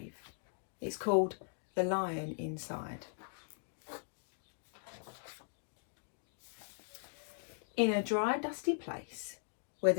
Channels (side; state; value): right; silent; digital silence